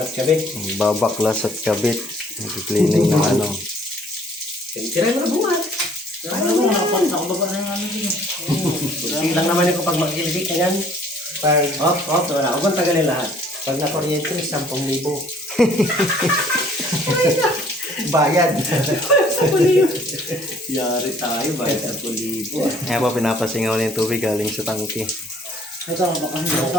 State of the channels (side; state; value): both; normal; correlation 0.58